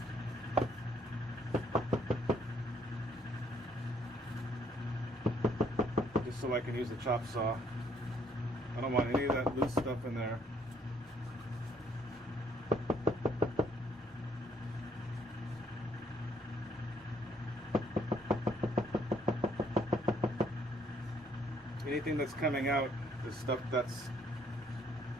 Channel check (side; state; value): both; normal; correlation 0.66